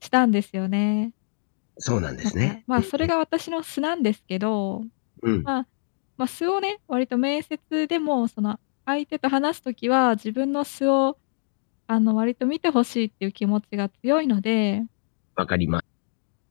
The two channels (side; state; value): right; silent; digital silence